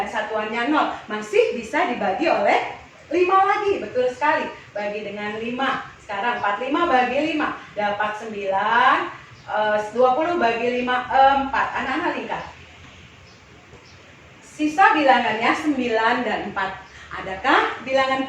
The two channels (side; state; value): both; identical; correlation 1.00